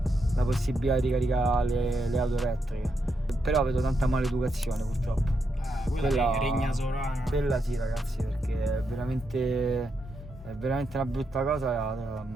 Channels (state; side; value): normal; both; correlation 0.82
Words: la possibilità di ricaricare le auto elettriche. Però vedo tanta maleducazione purtroppo. Quella regna sovrana. Quella sì, ragazzi, perché è veramente una brutta cosa